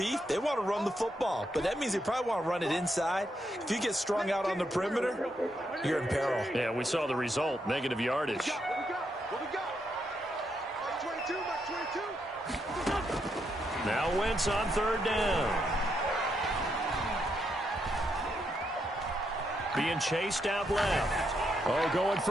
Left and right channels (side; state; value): both; normal; correlation 0.79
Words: They want to run the football, but that means they probably want to run it inside. If you get strung out on the perimeter, you're in peril. Yeah, we saw the result, negative yardage. Now Wentz on 3rd down. Being chased out left. Oh, going